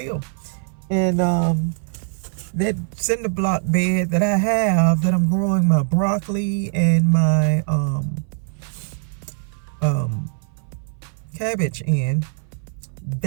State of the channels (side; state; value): left; silent; 59 dB below the other